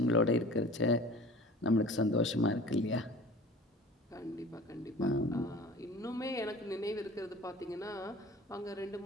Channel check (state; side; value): normal; both; correlation 0.43